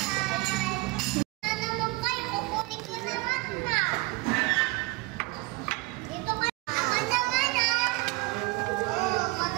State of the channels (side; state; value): left; quieter; 23.7 dB